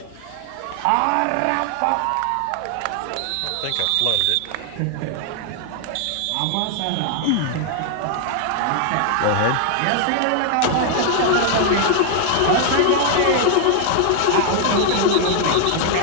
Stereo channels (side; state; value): both; different; correlation 0.00